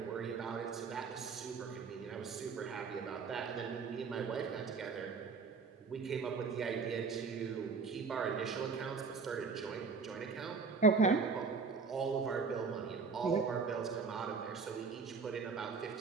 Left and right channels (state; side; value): quieter; left; 5.0 dB